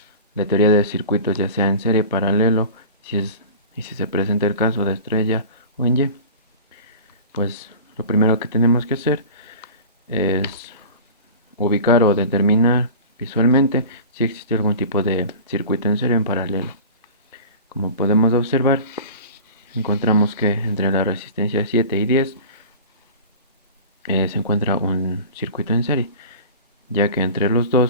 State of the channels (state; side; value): inverted; both; correlation -0.37